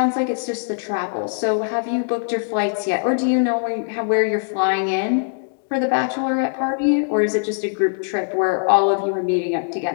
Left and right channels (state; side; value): silent; right; digital silence